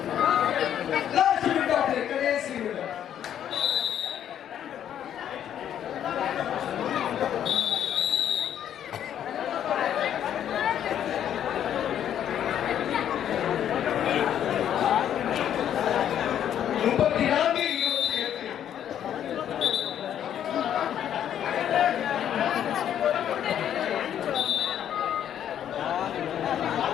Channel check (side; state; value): right; quieter; 10.0 dB